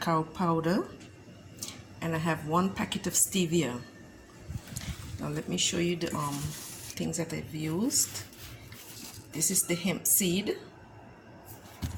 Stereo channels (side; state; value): both; identical; correlation 1.00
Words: powder, and I have 1 packet of stevia. Now let me show you the things that I've used. This is the hemp seed.